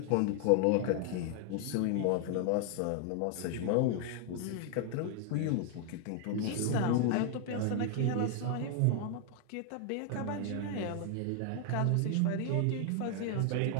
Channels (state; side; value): different; both; correlation 0.00